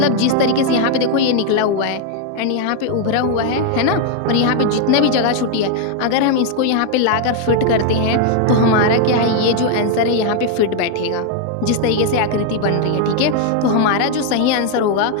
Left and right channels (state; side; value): different; both; correlation 0.00